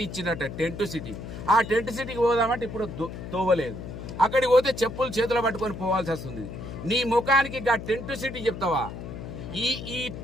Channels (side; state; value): left; noise; hum, 9 dB below the sound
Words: ఇచ్చిందట. టెంట్ సిటీ, ఆ టెంట్ సిటీకి పోదామంటే ఇప్పుడు తోవలేదు. అక్కడికి పోతే చెప్పులు చేతులు పట్టుకొని పోవాల్సి వస్తుంది. నీ ముఖానికి ఆ టెంట్ సిటీ చెప్తావా?